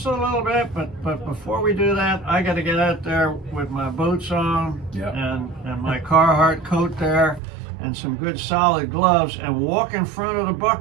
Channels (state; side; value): drops out; left; at 7.4 s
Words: a little bit. But before we do that, I got to get out there with my boots on and my Carhartt coat there, and some good solid gloves, and walk in front of the